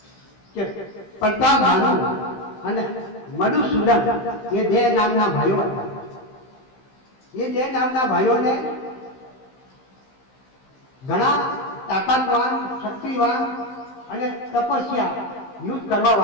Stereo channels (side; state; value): right; late; 15 ms